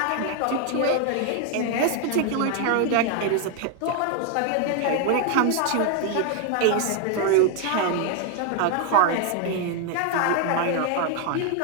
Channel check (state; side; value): different; both; correlation 0.01